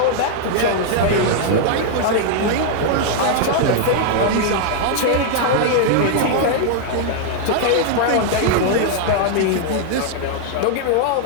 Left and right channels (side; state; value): both; different; correlation 0.00